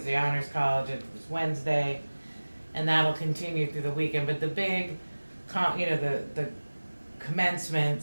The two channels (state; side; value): inverted; both; correlation -1.00